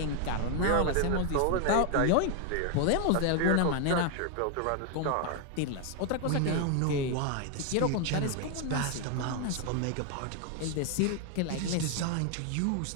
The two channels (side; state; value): both; different; correlation 0.00